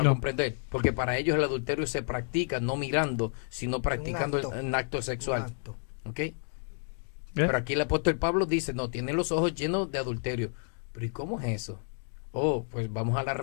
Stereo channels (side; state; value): right; silent; 58 dB below the other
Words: No. comprender, porque para ellos el adulterio se practica no mirando, sino practicando acto. un acto sexual. Exacto. ¿Ok? ¿Eh? Pero aquí el apóstol Pablo dice, no, tienen los ojos llenos de adulterio. Pero ¿y cómo es eso? Oh, pues vamos a la